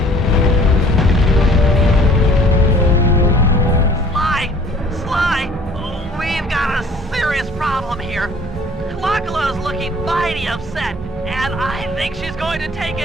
Sly, we've got a serious problem here. Clockula's looking mighty upset, and I think she's going to take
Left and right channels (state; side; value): normal; both; correlation 0.54